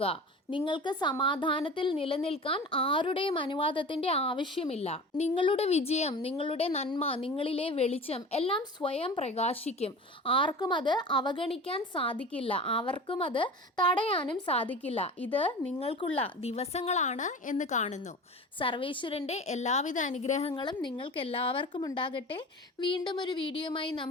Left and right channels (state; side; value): normal; both; correlation 0.36